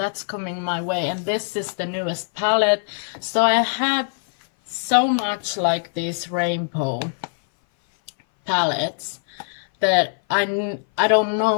coming my way. And this is the newest palette. So I have so much like these rainbow palettes that I don't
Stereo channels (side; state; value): right; silent; 59 dB below the other